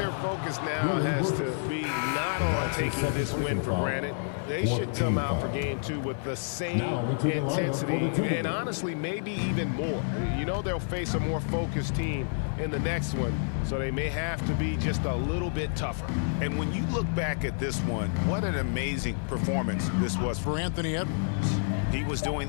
focus now has to be not on taking this win for granted. They should come out for game two with the same intensity and honestly maybe even more. You know they'll face a more focused team in the next one, so they may have to be just a little bit tougher. And when you look back at this one, what an amazing performance this was for Anthony Edwards. He was doing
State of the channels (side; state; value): right; silent; digital silence